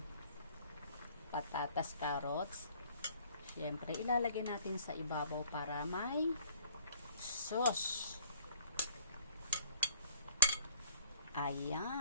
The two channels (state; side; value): inverted; both; correlation -0.58